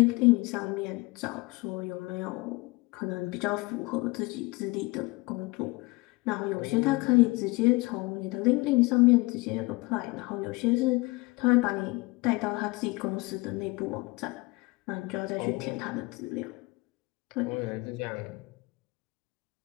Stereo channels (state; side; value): quieter; right; 24.2 dB